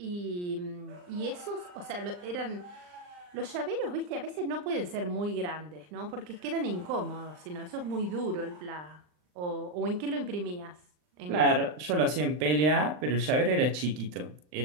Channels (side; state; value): left; late; 39 ms